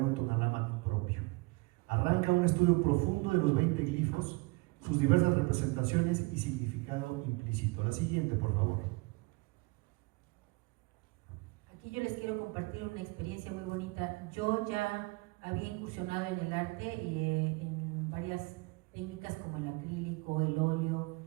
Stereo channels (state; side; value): quieter; left; 25.9 dB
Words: Tonalámatl propio. Arranca un estudio profundo de los 20 glifos, sus diversas representaciones y significado implícito. La siguiente, por favor. Aquí yo les quiero compartir una experiencia muy bonita. Yo ya había incursionado en el arte en varias técnicas como el acrílico, el óleo,